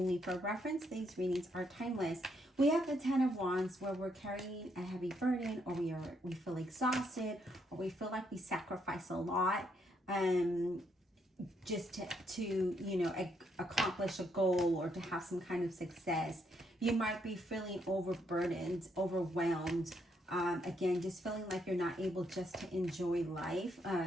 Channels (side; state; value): both; normal; correlation 0.75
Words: for reference. These readings are timeless. We have the 10 of Wands where we're carrying a heavy burden, or we feel exhausted, or we feel like we sacrifice a lot just to you know, accomplish a goal or to have some kind of success. You might be feeling overburdened, overwhelmed. Again, just feeling like you're not able just to enjoy life.